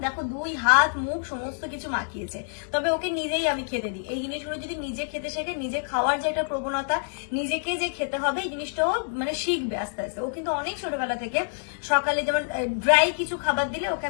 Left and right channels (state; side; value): silent; right; digital silence